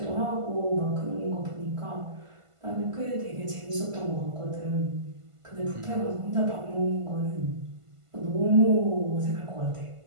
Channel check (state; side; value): late; left; 1.5 ms